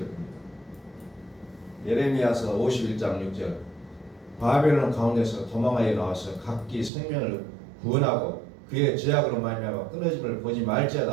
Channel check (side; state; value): left; drops out; at 6.9 s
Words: 예레미야서 51장 6절 바벨론 가운데서 도망하여 나와서 각기 생명을 구원하고 그의 죄악으로 말미암아 끊어짐을 보지